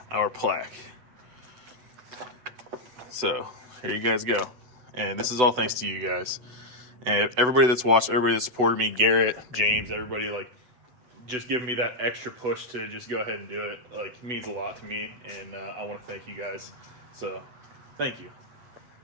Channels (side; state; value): left; late; 8.0 ms